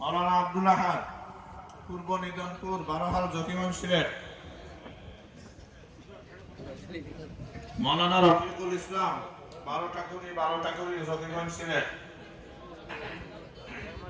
আব্দুল আহাদ পূর্ব নিদনপুর বারোহাল জকিগঞ্জ ছিলেন মৌলানা রফিকুল ইসলাম বারোটাকুড়ি জকিগঞ্জ ছিলেন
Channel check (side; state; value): both; identical; correlation 1.00